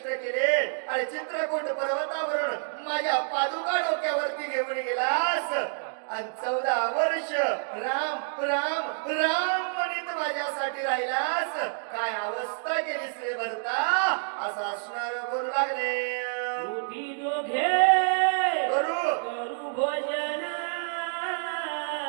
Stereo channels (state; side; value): silent; left; digital silence